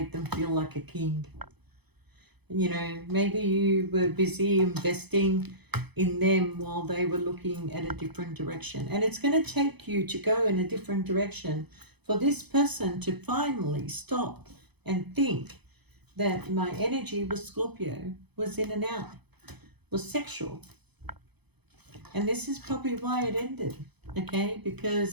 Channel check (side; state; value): left; late; 0.98 ms